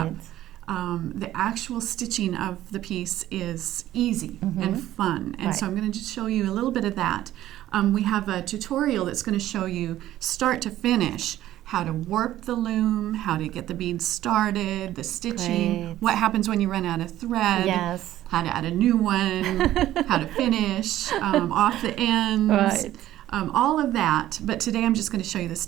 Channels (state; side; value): quieter; left; 13.6 dB